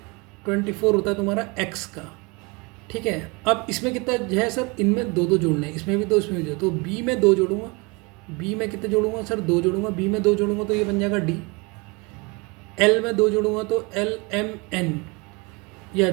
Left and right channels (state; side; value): quieter; left; 28.0 dB